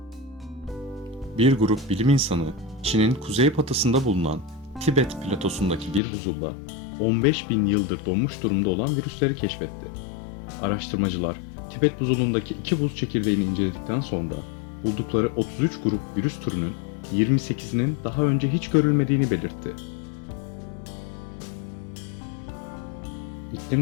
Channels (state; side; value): drops out; right; at 6.0 s